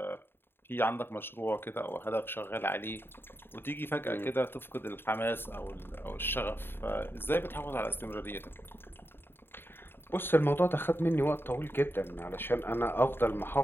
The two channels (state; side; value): late; right; 0.11 ms